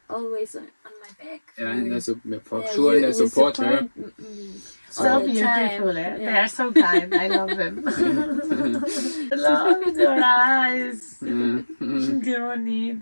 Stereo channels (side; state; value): both; inverted; correlation -1.00